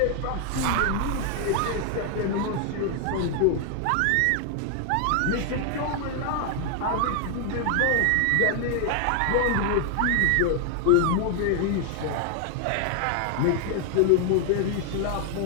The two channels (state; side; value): different; both; correlation 0.00